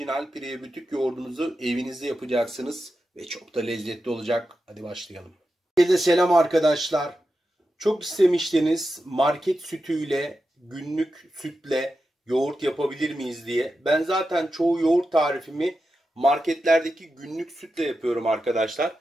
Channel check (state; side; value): normal; both; correlation 0.90